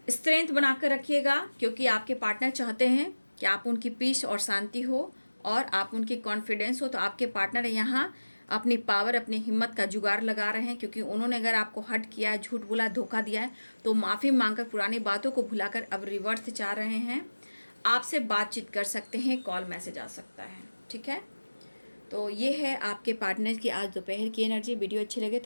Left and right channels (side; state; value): both; inverted; correlation -1.00